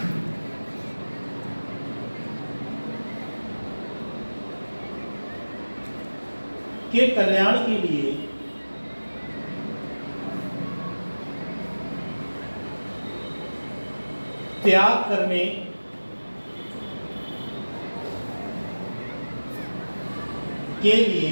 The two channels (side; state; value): both; inverted; correlation -1.00